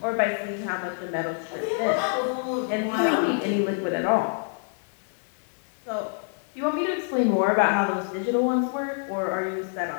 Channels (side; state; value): right; silent; 61 dB below the other